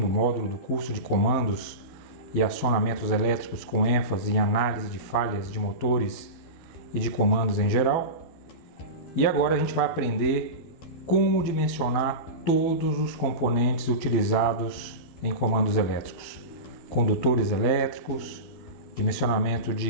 módulo do curso de comandos e acionamentos elétricos com ênfase em análise de falhas de motores e de comandos em geral. E agora a gente vai aprender como dimensionar todos os componentes utilizados em comandos elétricos, condutores elétricos, dimensionamento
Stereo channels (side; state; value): right; late; 12 ms